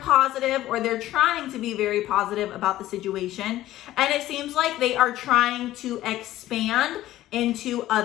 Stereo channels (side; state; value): right; quieter; 14.7 dB